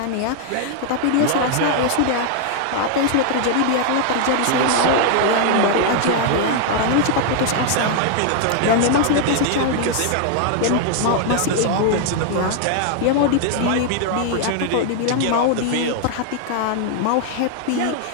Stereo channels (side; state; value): both; different; correlation 0.00